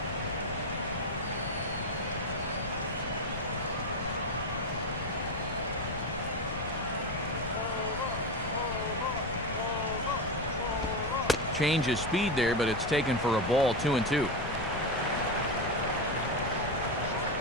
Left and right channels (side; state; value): left; noise; rumble, 8 dB below the sound